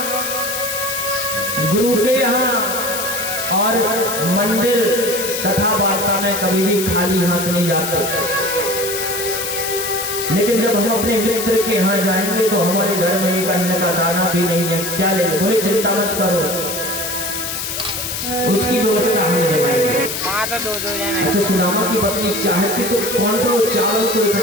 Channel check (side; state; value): left; noise; hiss, 4 dB below the sound